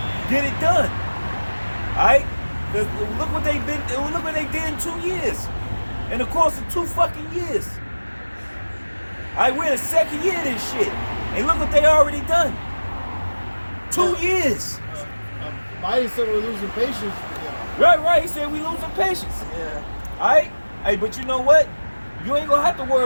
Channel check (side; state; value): both; inverted; correlation -1.00